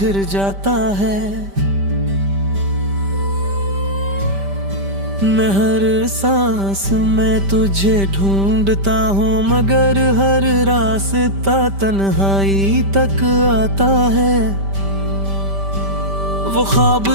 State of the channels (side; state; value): left; late; 5.1 ms